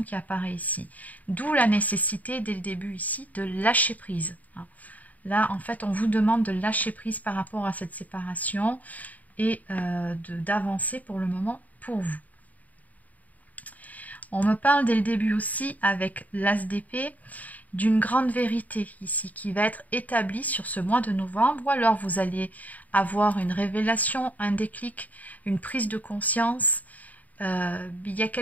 qui apparaît ici. D'où la nécessité, dès le début ici, de lâcher prise. Là, en fait, on vous demande de lâcher prise par rapport à cette séparation et d'avancer pour le moment pour vous. On me parle dès le début aussi, avec l'As d'épée, d'une grande vérité ici qui va être établie sur ce mois de novembre, ou alors vous allez avoir une révélation, un déclic, une prise de conscience. Il y a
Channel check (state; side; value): late; right; 0.075 ms